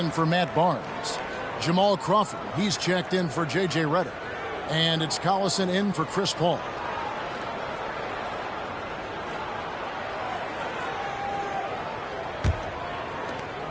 for Matt Barnes. Jamal Crawford, he's checked in for J.J. Redick. And it's Collison in for Chris Paul.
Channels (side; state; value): both; identical; correlation 1.00